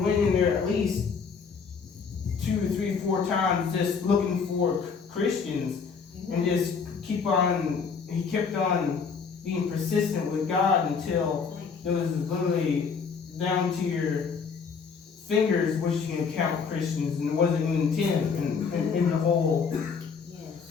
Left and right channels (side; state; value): right; quieter; 5.7 dB